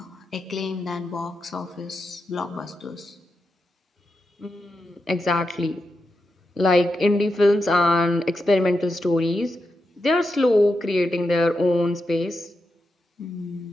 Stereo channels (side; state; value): both; normal; correlation 0.87